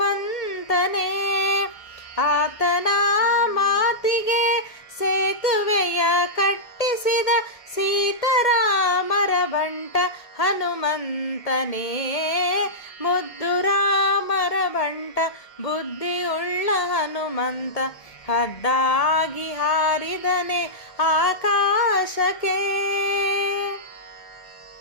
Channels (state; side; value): late; right; 1.8 ms